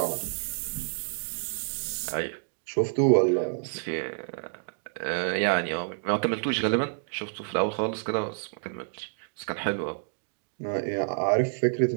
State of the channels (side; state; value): left; silent; digital silence